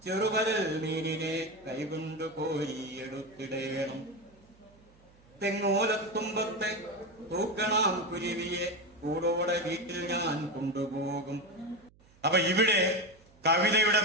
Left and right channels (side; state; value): right; noise; hum, 29 dB below the sound